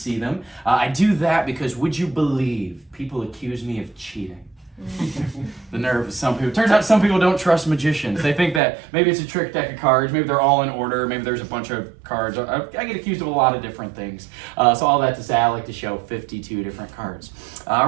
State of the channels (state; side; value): drops out; left; at 8.6 s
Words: them. I do that because, would you believe, people accuse me of cheating. The nerve of some people. Turns out some people don't trust magicians. They think that maybe it's a trick deck of cards, maybe they're all in order, maybe there's a bunch of cards. I get accused of a lot of different things. So all that to say, I like to show 52 different cards.